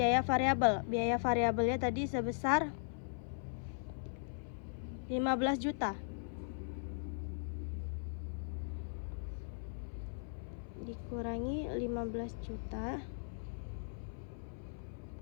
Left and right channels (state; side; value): silent; right; 52 dB below the other